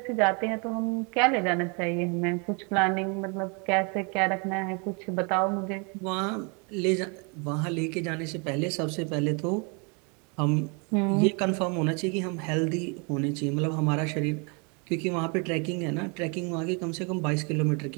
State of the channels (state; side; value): quieter; left; 34.0 dB